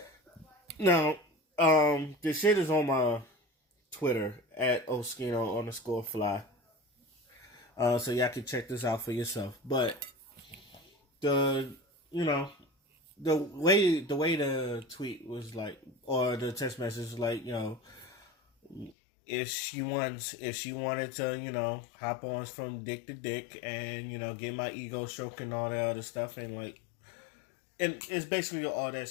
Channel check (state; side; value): drops out; right; at 18.9 s